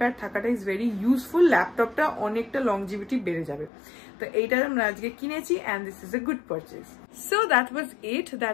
থাকাটা ইজ ভেরি ইউজফুল। ল্যাপটপটা অনেকটা লংজিভিটি বেড়ে যাবে। তো এইটা আমরা আজকে কিনেছি and this is a good purchase. So that was it,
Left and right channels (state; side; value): drops out; right; at 3.7 s